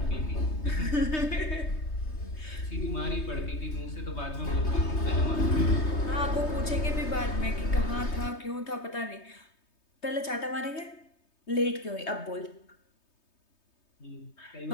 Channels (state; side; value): late; right; 3.2 ms